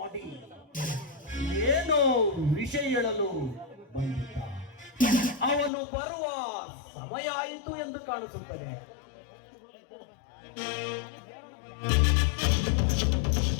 ಏನೋ ವಿಷಯ ಹೇಳಲು ಬಂದಿದ್ದ. ಅವನು ಬರುವ ಸಮಯ ಆಯಿತು ಎಂದು ಕಾಣಿಸುತ್ತದೆ.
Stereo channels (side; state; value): right; drops out; at 5.7 s